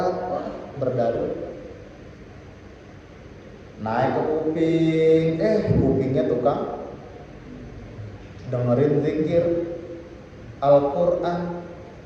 Berdalil. Naik ke kuping, kupingnya tukang dengerin zikir, Al-Quran,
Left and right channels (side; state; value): both; identical; correlation 1.00